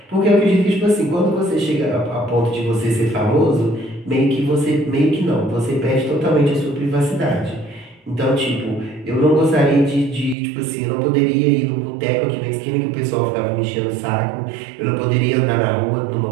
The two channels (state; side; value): drops out; left; at 10.4 s